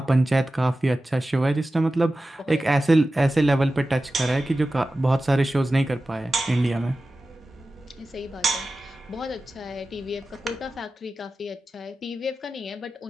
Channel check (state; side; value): normal; both; correlation 0.94